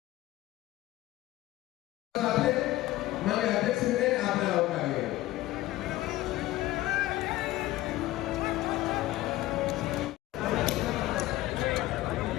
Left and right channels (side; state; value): right; quieter; 16.6 dB